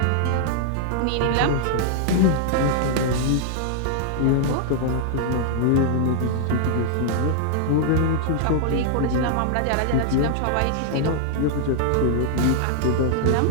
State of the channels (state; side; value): different; both; correlation -0.01